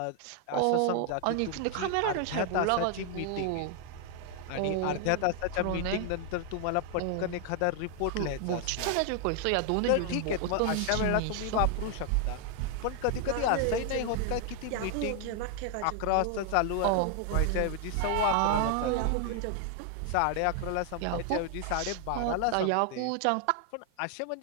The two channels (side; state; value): both; different; correlation 0.00